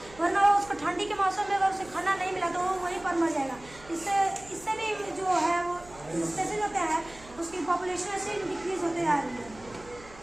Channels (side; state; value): right; noise; hum, 21 dB below the sound